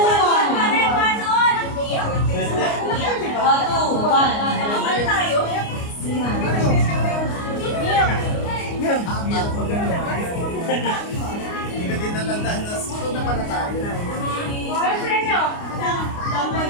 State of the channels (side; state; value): right; late; 29 ms